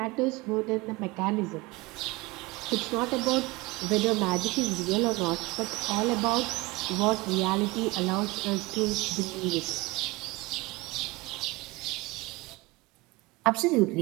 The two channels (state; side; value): quieter; left; 22.6 dB